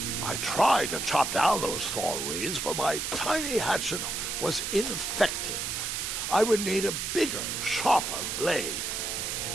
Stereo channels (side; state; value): right; noise; hiss, 2 dB below the sound